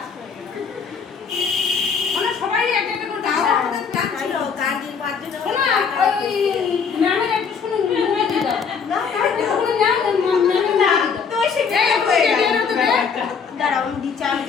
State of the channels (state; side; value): quieter; right; 6.1 dB